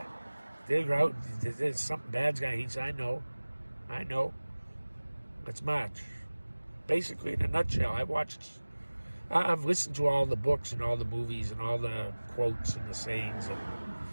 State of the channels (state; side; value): inverted; both; correlation -1.00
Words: There's something bad's going to. He said, I know. Let's march. Basically, in a nutshell, I've listened to all the books and all the movies and all the quotes and the sayings, and